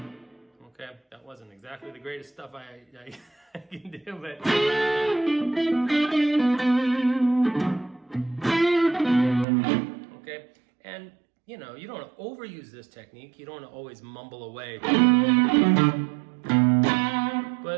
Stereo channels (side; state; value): left; drops out; at 9.5 s